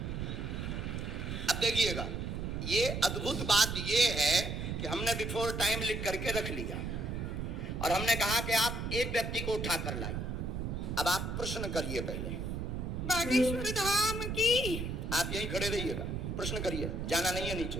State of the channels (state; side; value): noise; right; rumble, 3 dB below the sound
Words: अब देखिएगा, ये अद्भुत बात ये है कि हमने बिफोर टाइम लिख करके रख लिया और हमने कहा कि आप एक व्यक्ति को उठा कर लाइए। अब आप प्रश्न करिए पहले। बागेश्वर धाम की। आप यहीं खड़े रहिएगा, प्रश्न करिए, जाना नहीं है